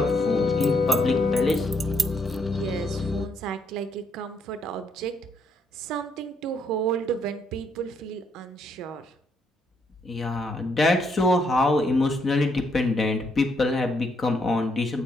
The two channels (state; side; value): normal; both; correlation 0.74